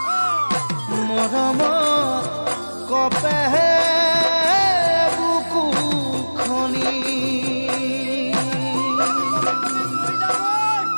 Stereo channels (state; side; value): inverted; both; correlation -1.00